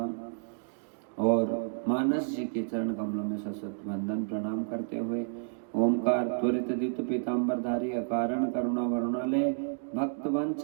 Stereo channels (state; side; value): silent; left; digital silence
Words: और मानस जी के चरण कमलों में सशत वंदन प्रणाम करते हुए ओमकार त्वरित द्युत पीताम्बरधारी अकारण करुणा वरुणालय भक्त